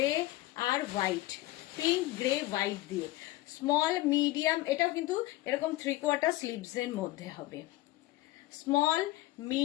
আর হোয়াইট, পিঙ্ক গ্রে হোয়াইট দিয়ে স্মল মিডিয়াম, এটাও কিন্তু এরকম 3/4 স্লিভস এর মধ্যে হবে। স্মল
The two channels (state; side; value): quieter; right; 17.8 dB